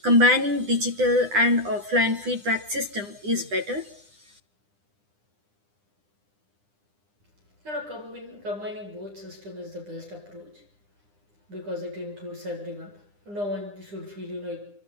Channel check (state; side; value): late; left; 9.9 ms